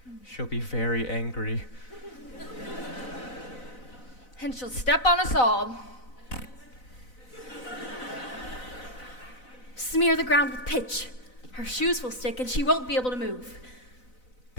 She'll be very angry. And she'll step on us all. Smear the ground with pitch. Her shoes will stick and she won't be able to move.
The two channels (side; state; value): right; late; 4.0 ms